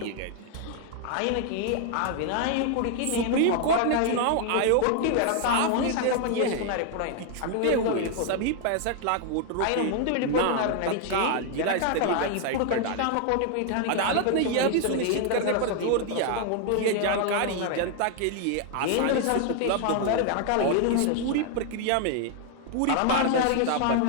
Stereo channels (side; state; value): both; different; correlation 0.00